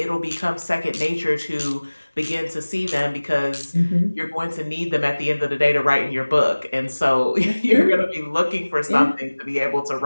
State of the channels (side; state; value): both; inverted; correlation -1.00